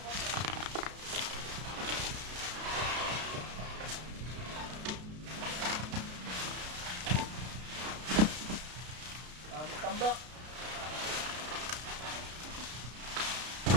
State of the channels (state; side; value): late; left; 32 ms